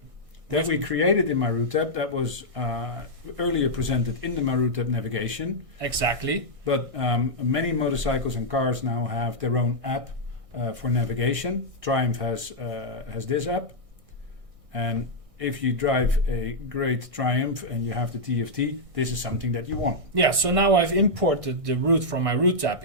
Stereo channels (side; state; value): left; late; 1.6 ms